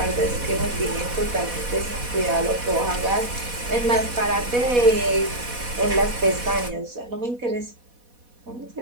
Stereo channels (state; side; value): late; left; 4.1 ms